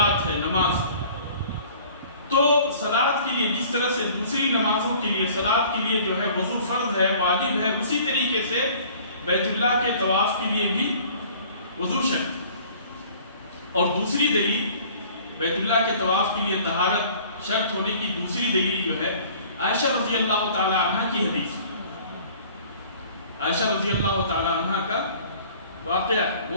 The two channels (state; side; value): inverted; both; correlation -0.51